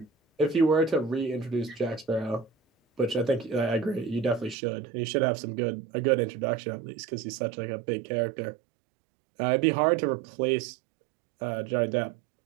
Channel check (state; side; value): drops out; left; at 4.5 s